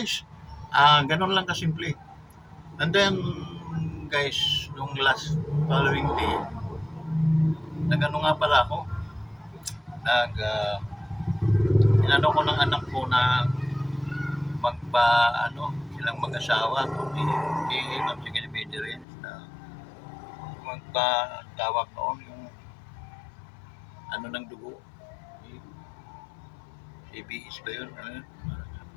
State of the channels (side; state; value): right; drops out; at 19.1 s